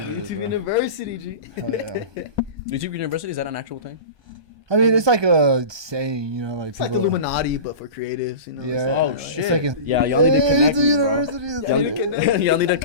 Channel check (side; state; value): left; late; 1.2 ms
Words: YouTube University, G. Oh, yeah. YouTube University, is that an actual thing? I mean, it's like a saying, you know, like it's like the Illuminati, but for creatives, you know. Yeah. Oh, it's shit. It's like yeah, y'all need to connect me, bro. University. Y'all need to